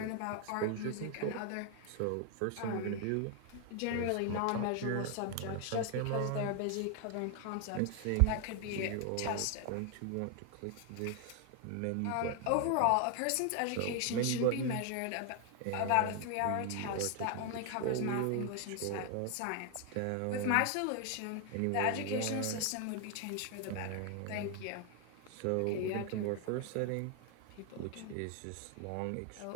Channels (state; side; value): different; both; correlation 0.01